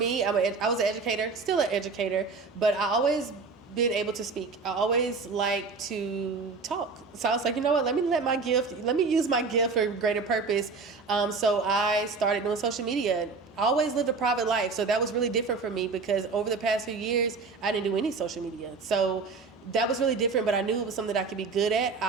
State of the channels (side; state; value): left; quieter; 4.4 dB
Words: I was an educator, still an educator, but I always been able to speak. I always like to talk. So I was like, you know what, let me use my gift for greater purpose. So I started doing social media. I always lived a private life, so that was really different for me, because over the past few years, I didn't do any social media. So that was really different, but I knew it was something that I could be good at.